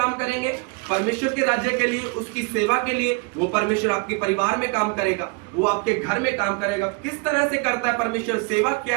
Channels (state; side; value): quieter; left; 29.7 dB